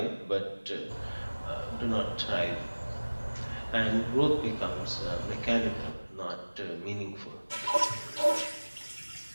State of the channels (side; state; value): both; inverted; correlation -1.00